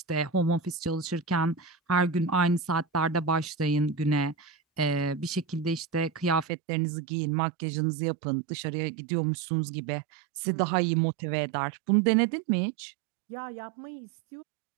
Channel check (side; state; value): left; drops out; at 6.5 s